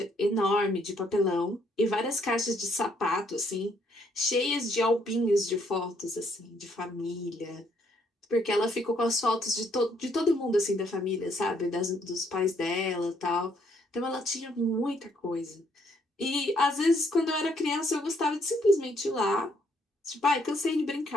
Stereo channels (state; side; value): normal; both; correlation 0.69